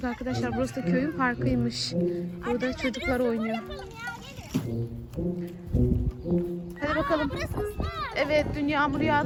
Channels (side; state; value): both; identical; correlation 1.00